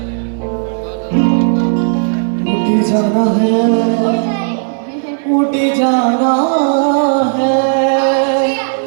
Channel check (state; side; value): silent; left; digital silence